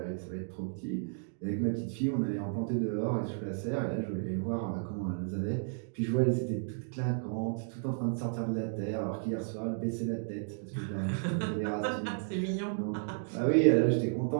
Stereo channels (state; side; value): silent; left; digital silence